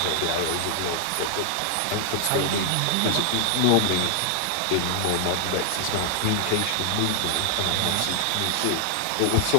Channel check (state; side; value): different; both; correlation 0.00